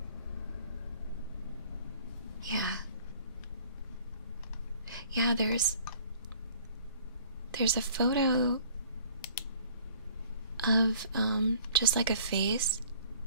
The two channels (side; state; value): both; inverted; correlation -0.53